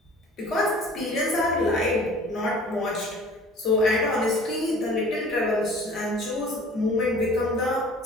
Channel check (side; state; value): both; normal; correlation 0.47